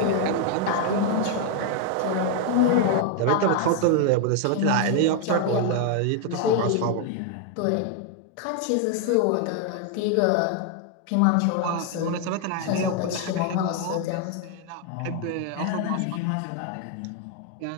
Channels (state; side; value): different; both; correlation 0.00